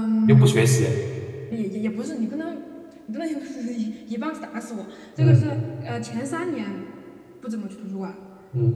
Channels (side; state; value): both; identical; correlation 1.00